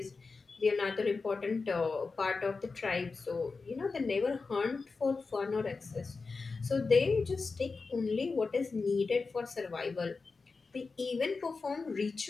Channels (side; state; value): right; quieter; 4.3 dB